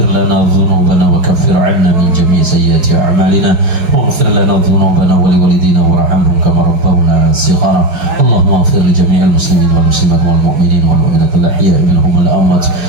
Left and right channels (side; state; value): left; late; 5.2 ms